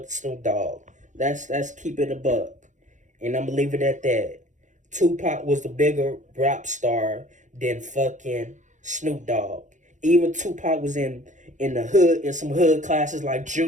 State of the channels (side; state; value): left; late; 0.36 ms